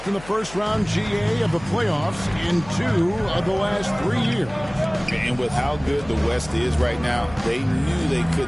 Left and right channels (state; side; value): noise; left; hum, 17 dB below the sound